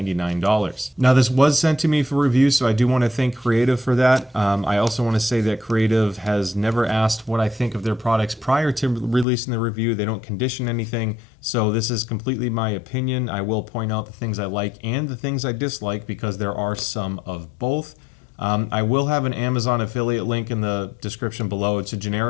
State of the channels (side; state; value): right; drops out; at 9.2 s